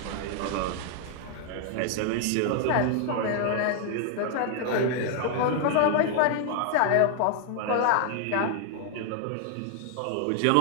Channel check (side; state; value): both; different; correlation 0.00